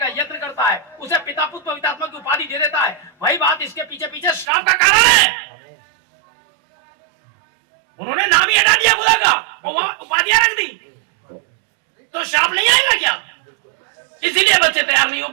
यत्न करता है, उसे पिता पुत्र पवित्र आत्मा की उपाधि दे देता है। वही बात इसके पीछे पीछे श्राप का कारण है। उन्होंने नाम ही हटा दिया खुदा का और वह उपाधियां रख दी, तो श्राप नहीं आएगा क्या? इसीलिए बच्चे तैयार नहीं हो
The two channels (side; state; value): left; drops out; at 4.5 s